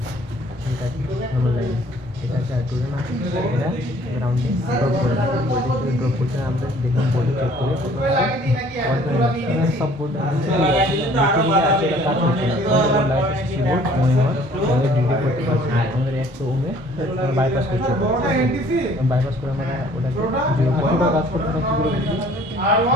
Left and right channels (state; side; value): normal; both; correlation 0.56